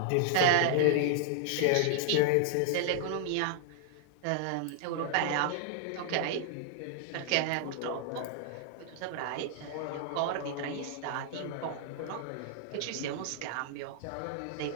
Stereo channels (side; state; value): both; different; correlation 0.00